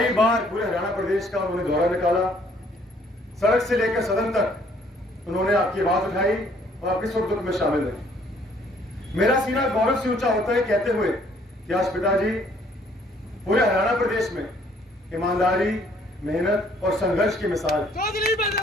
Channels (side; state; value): both; normal; correlation 0.62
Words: बार पूरे हरियाणा प्रदेश का उन्होंने दौरा निकाला। सड़क से लेकर सदन तक उन्होंने आपकी आवाज उठाई और आपके सुख दुख में शामिल रहे। मेरा सीना गौरव से ऊंचा होता है कहते हुए कि आज पिताजी पूरे हरियाणा प्रदेश में ईमानदारी, मेहनत और संघर्ष की मिसाल।